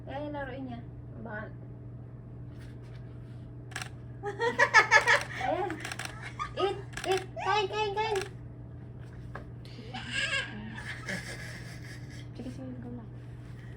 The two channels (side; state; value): both; identical; correlation 1.00